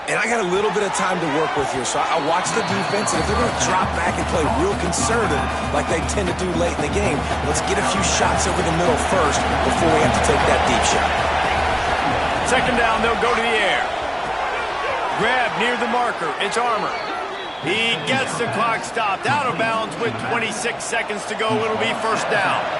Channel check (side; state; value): both; identical; correlation 1.00